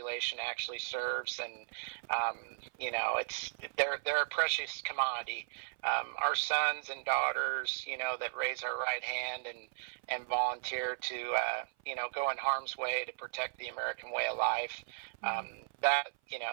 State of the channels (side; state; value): left; silent; 54 dB below the other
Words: actually serves, and they're a precious commodity. Our sons and daughters, that raise our right hand and volunteer to go in harm's way to protect the American way of life.